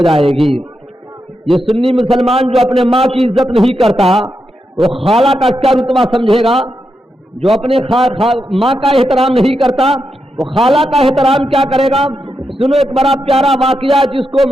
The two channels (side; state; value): both; normal; correlation 0.85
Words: جائے گی. یہ سنی مسلمان جو اپنے ماں کی عزت نہیں کرتا وہ خالہ کا کیا رتبہ سمجھے گا؟ جو اپنے ماں کا احترام نہیں کرتا وہ خالہ کا احترام کیا کرے گا؟ سنو ایک بڑا پیارا واقعہ جس کو